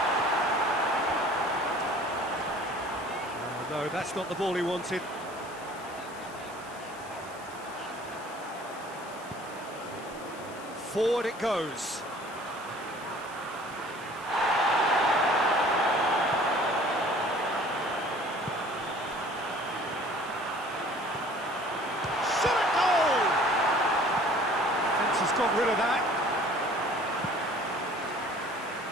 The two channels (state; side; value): noise; left; hiss, 20 dB below the sound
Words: No, that's not the ball he wanted. Forward it goes. Shot at goal! Fence has got rid of that.